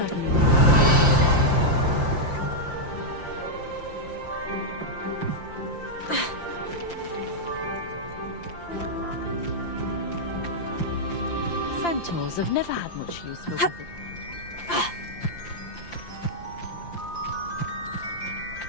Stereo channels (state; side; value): late; right; 5.8 ms